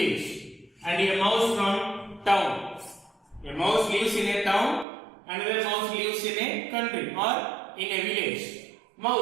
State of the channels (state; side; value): drops out; left; at 4.9 s